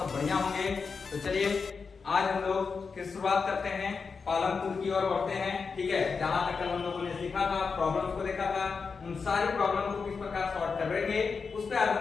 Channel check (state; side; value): quieter; right; 5.2 dB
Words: सब बढ़िया होंगे। तो चलिए आज हम लोग फिर शुरुआत करते हैं, पालनपुर की ओर बढ़ते हैं। ठीक है, जहां तक कल हम लोगों ने सीखा था, प्रॉब्लम्स को देखा था, उन सारी प्रॉब्लम को किस प्रकार सॉल्व करेंगे उस पर आज